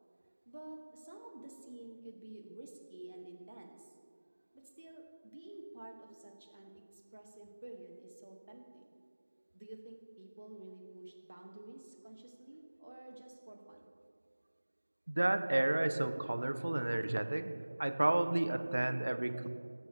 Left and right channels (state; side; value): inverted; both; correlation -1.00